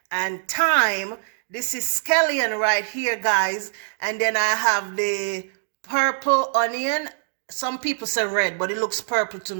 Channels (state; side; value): silent; left; digital silence